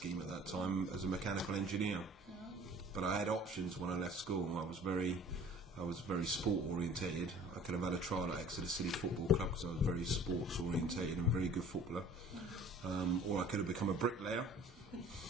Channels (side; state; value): both; normal; correlation 0.49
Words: at that time as a mechanical engineer. But I had options when I left school. I was very sport orientated. I could have had a trial at Exeter City Football Club because I was very sports orientated and very good footballer. Or I could have become a bricklayer